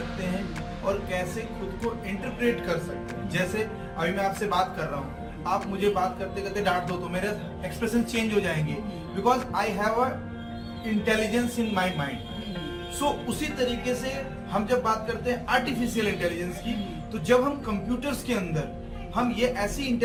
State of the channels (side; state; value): both; identical; correlation 1.00